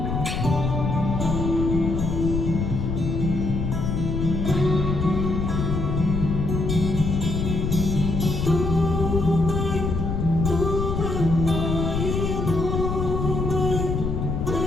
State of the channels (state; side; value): noise; left; rumble, 1 dB below the sound